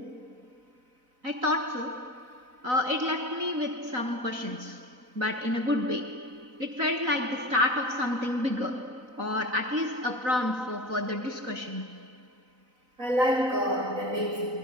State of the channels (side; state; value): left; late; 4.0 ms